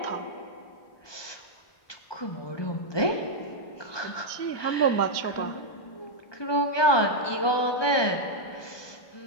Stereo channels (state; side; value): late; right; 1.2 ms